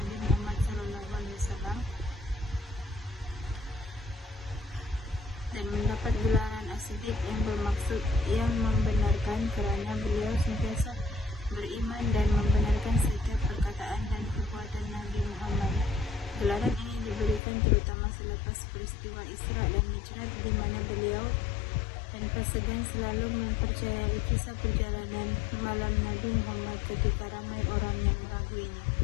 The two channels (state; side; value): drops out; right; at 17.4 s